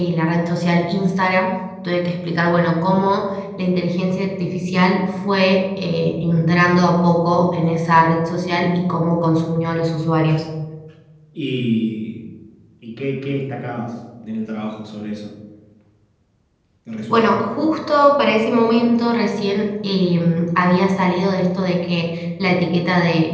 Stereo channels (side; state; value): both; identical; correlation 1.00